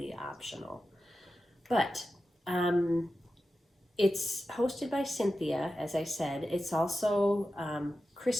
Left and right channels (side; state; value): both; normal; correlation 0.92